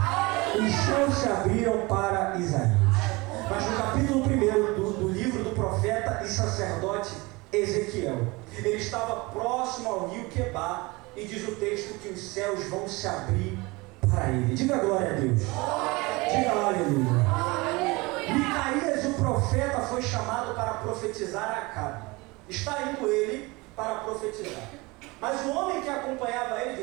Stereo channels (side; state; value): left; quieter; 24.2 dB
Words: Os céus se abriram para Isaías. Mas no capítulo 1 do livro do profeta e sacerdote Ezequiel, ele estava próximo ao rio Quebar, e diz o texto que os céus vão se abrir para ele. Diga glória a Deus. Diga aleluia. Micaías, o profeta, foi chamado para profetizar a Acabe. Está indo ele para profetizar. Mas o homem que acompanhava ele